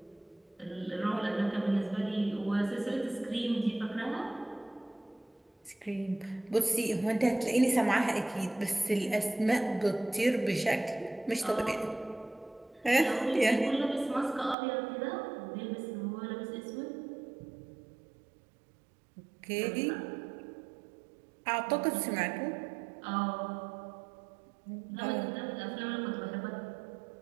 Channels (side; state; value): left; drops out; at 14.6 s